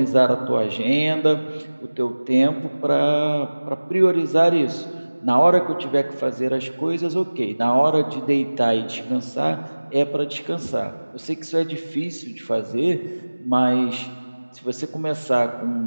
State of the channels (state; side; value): inverted; both; correlation -1.00